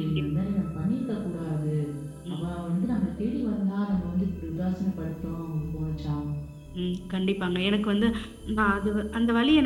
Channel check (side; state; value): both; identical; correlation 1.00